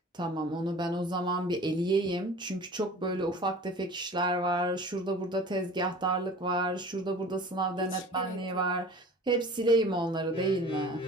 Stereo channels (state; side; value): normal; both; correlation 0.42